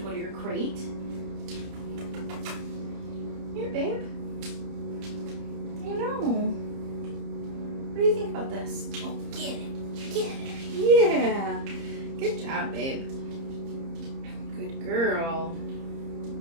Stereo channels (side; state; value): left; late; 30 ms